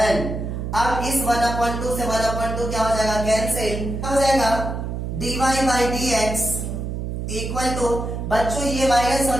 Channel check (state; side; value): noise; right; hum, 4 dB below the sound